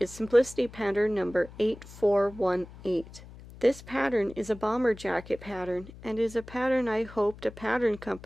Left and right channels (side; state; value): left; noise; hum, 18 dB below the sound